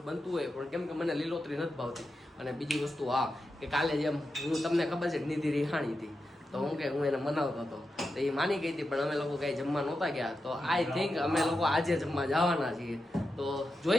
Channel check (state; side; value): normal; both; correlation 0.89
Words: બનતું હોય, પણ કેમ કે મને લીલોતરી નથી ભાવતી. અને બીજી વસ્તુ કે કાલે જેમ હું તમને ખબર છે નિધિ રિહાણી હતી તો હું એને મનાવતો હતો તો એ માની ગઈ હતી, પણ અમે લોકો કઈ જમવા નહોતા ગયા. તો આઈ થિંક અમે લોકો આજે જમવા જવાના છીએ. તો